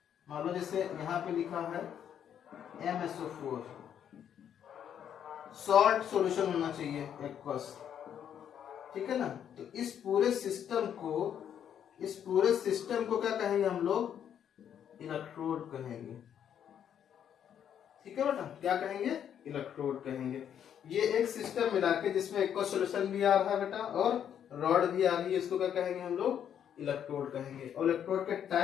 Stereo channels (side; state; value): right; quieter; 9.2 dB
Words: मान लो जैसे यहाँ पे लिखा है MSO4, सॉल्ट सॉल्यूशन होना चाहिए एक्वस, ठीक है ना। तो इस पूरे सिस्टम को क्या कहेंगे हम लोग, इलेक्ट्रोड कहेंगे, ठीक है बेटा, क्या कहेंगे, इलेक्ट्रोड कहेंगे। ये एक सिस्टम मिला के जिसमें एक्वस सॉल्यूशन भी आ रहा है बेटा और रॉड भी आ रही है, इसको क्या कहेंगे हम लोग, इलेक्ट्रोड कहेंगे। और इलेक्ट्रोड के